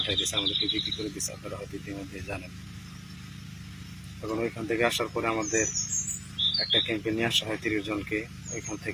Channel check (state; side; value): identical; both; correlation 1.00